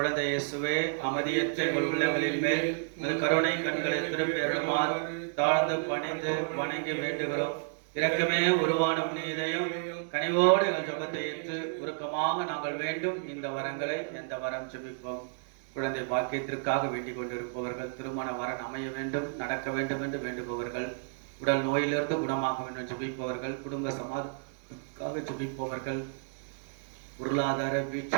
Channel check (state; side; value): silent; left; digital silence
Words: இயேசுவே, அமைதியற்ற எங்கள் உள்ளங்களின் மேல் உமது கருணை கண்களை திருப்பி அருளுமாறு தாழ்ந்து பணிந்து வணங்கி வேண்டுகிறோம். இரக்கமே உருவான புனிதையும் கனிவோடு எங்கள் ஜெபத்தை ஏற்று உருக்கமாக நாங்கள் வேண்டும் இந்த வரங்களை எந்த வரம் ஜெபிப்போம். குழந்தை பாக்கியத்திற்காக வேண்டிக் கொண்டிருப்பவர்கள், திருமண வரன் அமைய வேண்டும், நடக்க வேண்டும் என்று வேண்டுபவர்கள், உடல் நோயிலிருந்து குணமாக வேண்டும் ஜெபிப்பவர்கள், குடும்ப சமாதானத்திற்காக ஜெபிப்பவர்கள், பொருளாதார